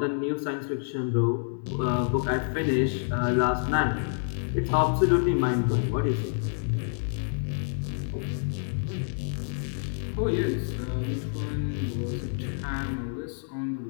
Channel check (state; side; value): silent; right; digital silence